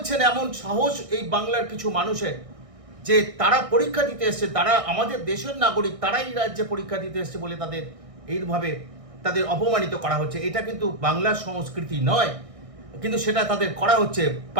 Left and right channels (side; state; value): left; late; 1.6 ms